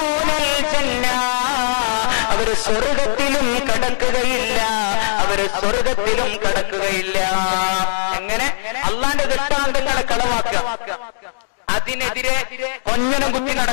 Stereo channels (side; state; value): right; silent; 65 dB below the other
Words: ജന്ന, അവര് സ്വർഗത്തിലും കടക്കുകയില്ല, അവര് സ്വർഗത്തിലും കടക്കുകയില്ല. എങ്ങനെ? അള്ളാന്റെ ദൃഷ്ടാന്തങ്ങളെ കളവാക്കുക. അതിനെതിരെ കൊഞ്ഞനം കുത്തി